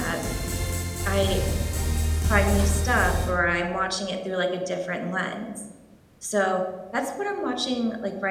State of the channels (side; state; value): both; identical; correlation 1.00